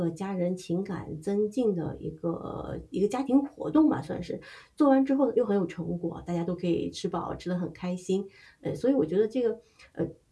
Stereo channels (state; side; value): identical; both; correlation 1.00